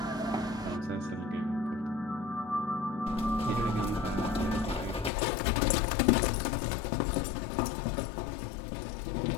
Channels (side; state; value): right; drops out; at 5.1 s